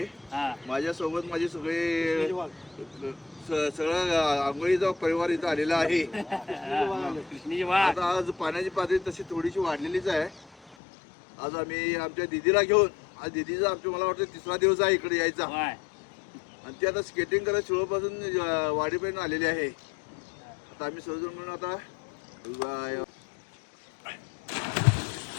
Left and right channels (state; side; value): drops out; right; at 10.8 s